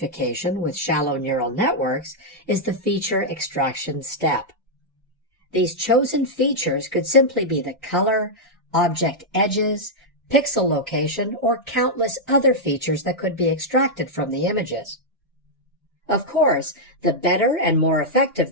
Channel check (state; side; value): normal; both; correlation -0.05